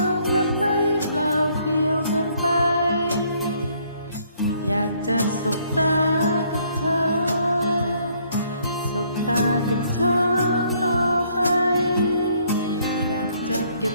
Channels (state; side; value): inverted; both; correlation -0.65